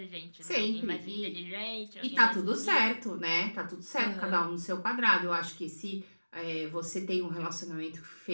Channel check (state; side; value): inverted; both; correlation -1.00